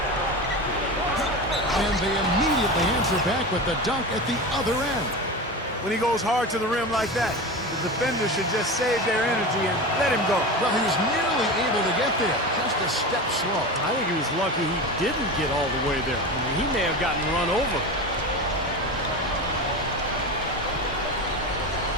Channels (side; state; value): both; normal; correlation 0.26